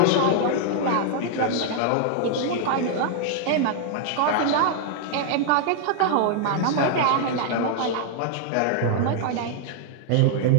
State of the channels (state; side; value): different; both; correlation -0.01